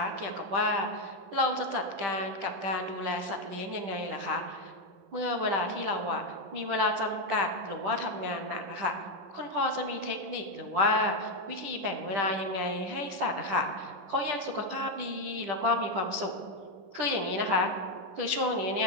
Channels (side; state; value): left; late; 10 ms